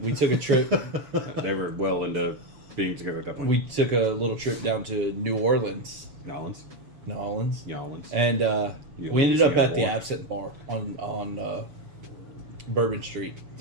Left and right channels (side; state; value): left; late; 7.0 ms